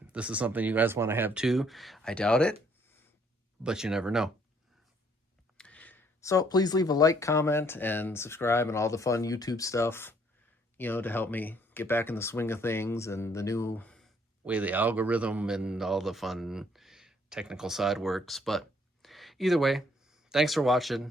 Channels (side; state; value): both; normal; correlation 0.65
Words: this is something you guys want to have too. I doubt it, but you never know. So please leave a like, comment, and subscribe and all the fun YouTube stuff, you know, to help me get back in the swing of things and the new way the algorithm and all the fun technical side works. But either way, thanks for watching.